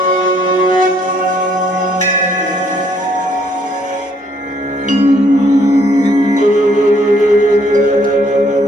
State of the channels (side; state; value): both; normal; correlation 0.66